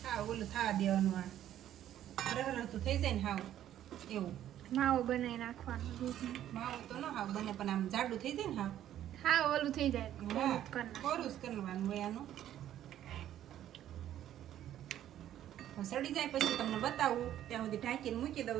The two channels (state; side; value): quieter; left; 11.7 dB